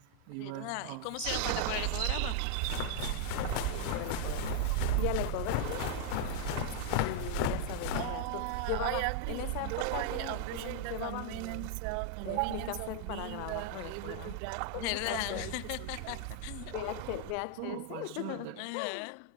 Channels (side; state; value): both; different; correlation 0.00